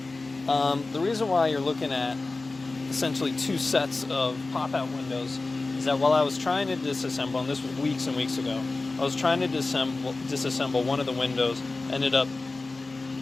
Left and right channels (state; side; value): quieter; right; 3.4 dB